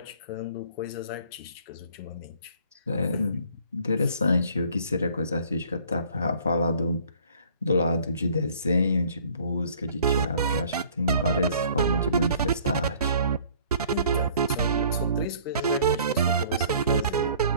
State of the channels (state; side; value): inverted; both; correlation -0.55